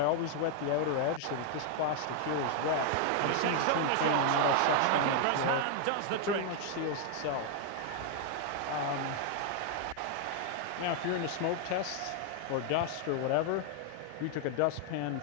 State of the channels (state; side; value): different; both; correlation 0.00